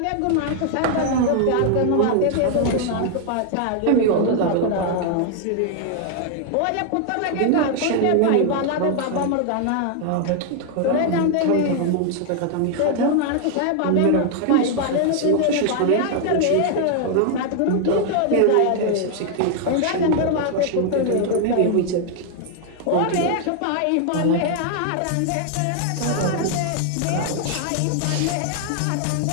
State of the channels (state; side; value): different; both; correlation 0.00